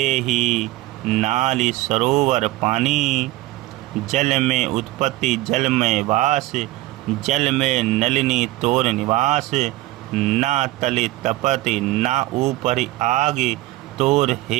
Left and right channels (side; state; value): left; quieter; 18.0 dB